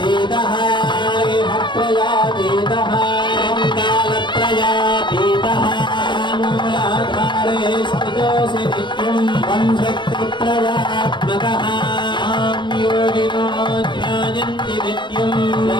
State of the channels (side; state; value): right; late; 0.23 ms